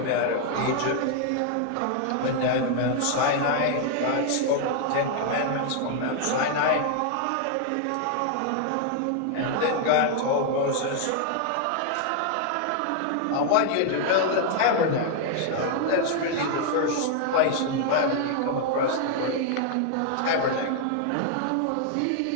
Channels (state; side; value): different; both; correlation 0.00